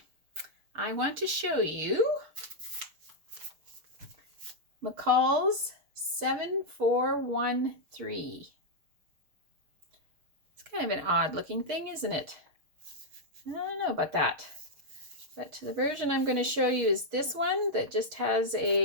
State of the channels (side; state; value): left; late; 6.5 ms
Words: I want to show you McCalls 7413. It's kind of an odd looking thing, isn't it? I don't know about that. But the version I'm going to show you is this one that just has